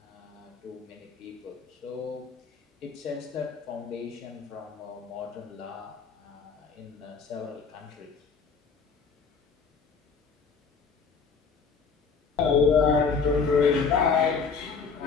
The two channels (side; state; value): right; quieter; 5.4 dB